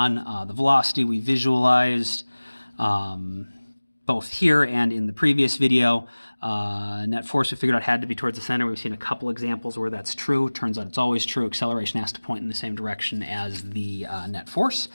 the velocity we visualized both here and in the previous video. Net force we figured out had to be towards the center. We've seen a couple examples where that's true. Turns out it's always true. Acceleration has to point in the same direction as the net force.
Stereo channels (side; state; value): both; inverted; correlation -1.00